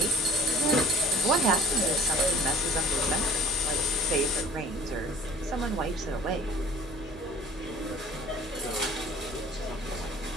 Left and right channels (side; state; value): both; normal; correlation 0.49